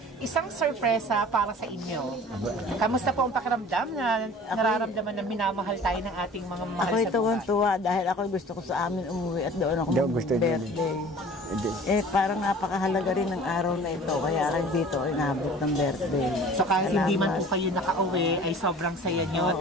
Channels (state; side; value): normal; both; correlation 0.45